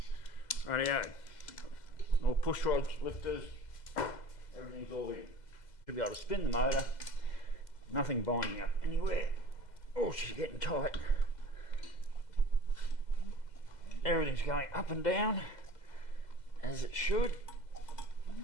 Rightio, all push rods, lifters, everything's all in. Should be able to spin the motor, nothing binding up anywhere. Oh, she's getting tight. Everything's going up and down as it should.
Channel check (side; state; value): right; late; 2.0 ms